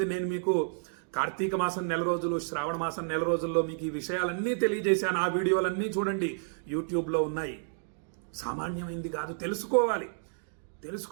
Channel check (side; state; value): left; silent; digital silence